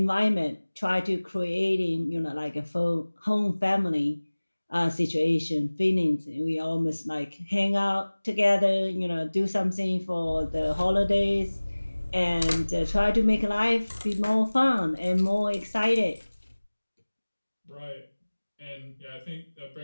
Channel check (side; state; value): both; inverted; correlation -1.00